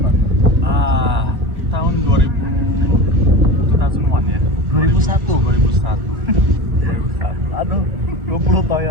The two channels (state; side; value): late; left; 1.8 ms